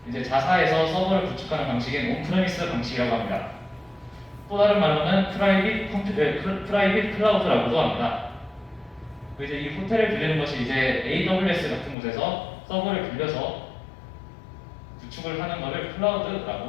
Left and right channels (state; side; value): drops out; right; at 12.0 s